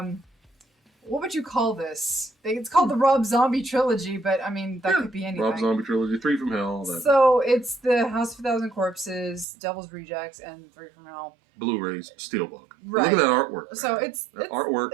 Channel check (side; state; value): left; drops out; at 9.5 s